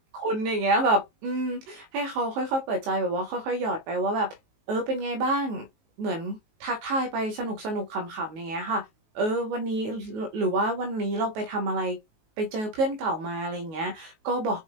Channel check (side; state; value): left; late; 19 ms